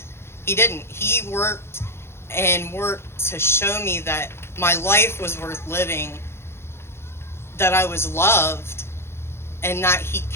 He worked and worked to show me that my life was worth living, that I was loved, and that he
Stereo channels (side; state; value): right; late; 0.12 ms